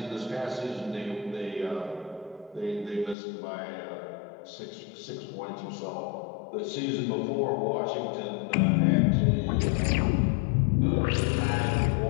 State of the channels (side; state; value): right; drops out; at 3.2 s